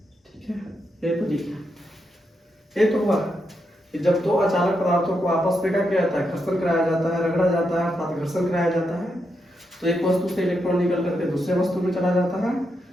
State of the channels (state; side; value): normal; both; correlation 0.83